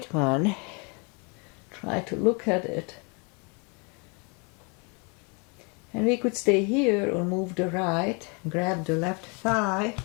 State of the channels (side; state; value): right; quieter; 33.1 dB